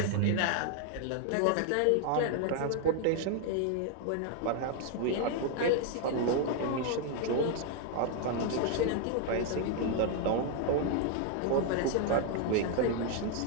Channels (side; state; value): both; different; correlation 0.00